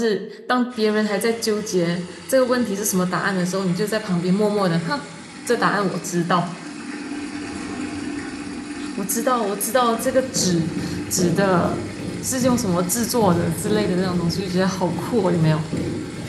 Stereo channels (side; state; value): both; identical; correlation 1.00